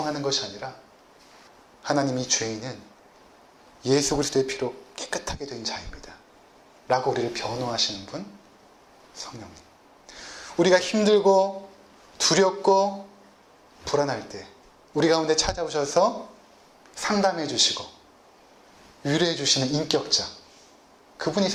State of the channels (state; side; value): identical; both; correlation 1.00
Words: 것이 아니라 하나님이 죄인은 예수 그리스도의 피로 깨끗하게 된 자입니다 라고 우리를 변호하시는 분, 성령님. 우리가 힘들고 두렵고 불안할 때 우리 가운데 찾아오셔서 상담해 주시고 위로해 주시는 인격자, 그분이